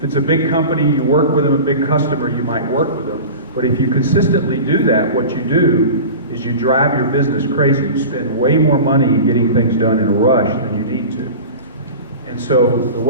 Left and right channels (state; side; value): inverted; both; correlation -0.33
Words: it's a big company, you work with them, a big customer, you might work with them. But if you consistently do that, what you do is you drive your business crazy. You spend way more money getting things done in a rush than you need to. And so the